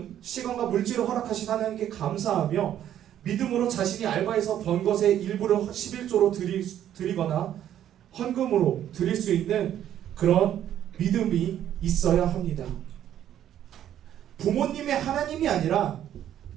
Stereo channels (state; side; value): quieter; left; 10.9 dB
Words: 시간과 물질을 허락하신 하나님께 감사하며 믿음으로 자신이 알바해서 번 것의 일부를 11조로 드리거나 헌금으로 드릴 수 있는 그런 믿음이 있어야 합니다. 부모님의 하나님이 아니라